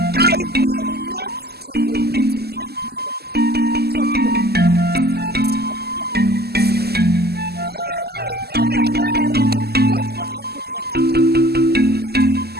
I will not tolerate where maidens talk from both sides of their mouth. Yes. Let what happened here today never,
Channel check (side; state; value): left; late; 0.46 ms